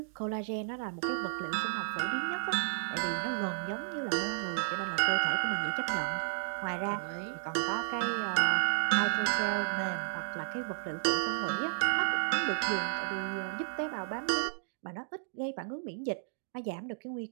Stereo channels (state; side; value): silent; left; digital silence